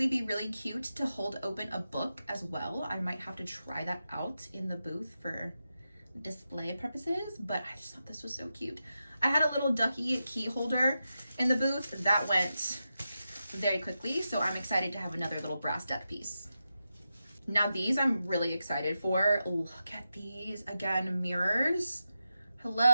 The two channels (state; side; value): inverted; both; correlation -0.90